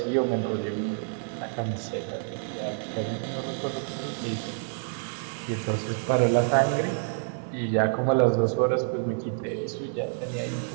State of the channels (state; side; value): silent; left; digital silence